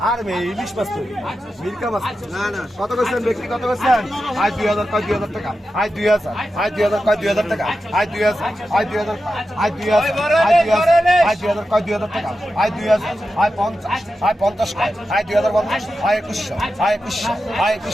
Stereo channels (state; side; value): normal; both; correlation 0.91